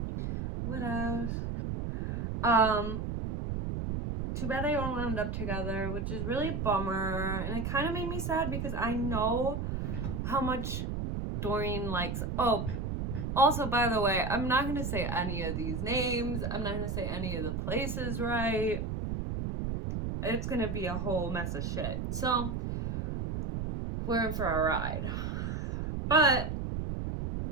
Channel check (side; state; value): right; noise; rumble, 2 dB below the sound